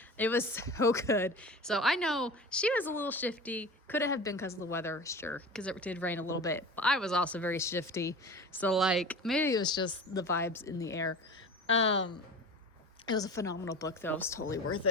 It was so good. So I know she was a little shifty. Could have been because of the weather, sure, because it did rain a little bit. But I was also very shifty. So maybe it was just the vibes in the air. It was a phenomenal book, though. It was totally worth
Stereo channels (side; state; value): both; normal; correlation 0.35